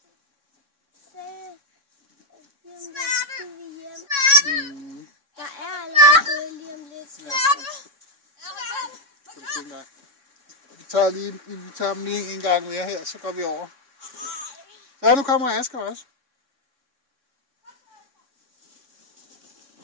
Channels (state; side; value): late; left; 3.6 ms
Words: Der er allerede gået lige om lidt. Kan du tænke dig? Vi tager dem lige en gang mere her, så går vi over. Så nu kommer Asger også.